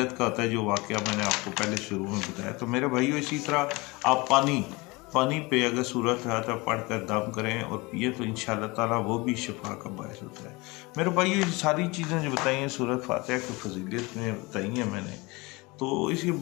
کا ہوتا ہے، جو واقعہ میں نے آپ کو پہلے شروع میں بتایا۔ تو میرے بھائیو، اسی طرح آپ پانی پہ اگر سورت فاتحہ پڑھ کر دم کریں اور پیے تو انشاءاللہ تعالیٰ وہ بھی شفا کا باعث ہوتا ہے۔ میرے بھائیو، یہ ساری چیزیں جو بتائی ہیں سورت فاتحہ کی فضیلت میں بتائی ہیں میں نے، تو اس کی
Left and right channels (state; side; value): quieter; right; 24.7 dB